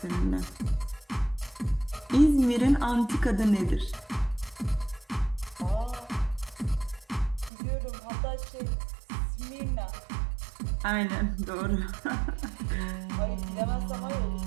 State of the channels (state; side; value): drops out; left; at 7.5 s